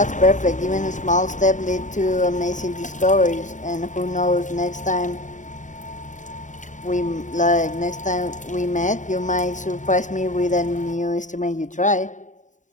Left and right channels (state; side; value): late; right; 0.36 ms